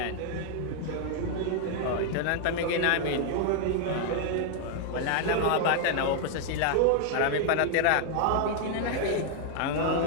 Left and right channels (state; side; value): different; both; correlation 0.00